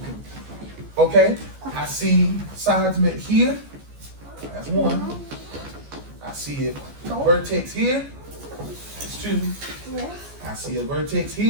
Okay, I see sides met here. That's one. I see a vertex here. That's two. I see a vertex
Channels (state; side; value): late; left; 14 ms